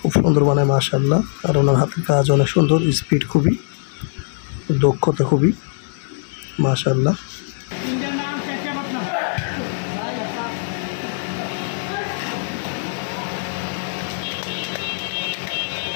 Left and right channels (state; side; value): silent; right; 65 dB below the other